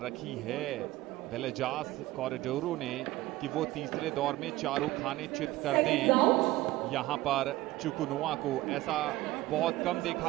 रखी है वेलेजास कॉरिडोरो ने कि वो तीसरे दौर में चारों खाने चित कर दें यहां पर चुकनोवा को? ऐसा बहुत कम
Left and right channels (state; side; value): quieter; left; 17.6 dB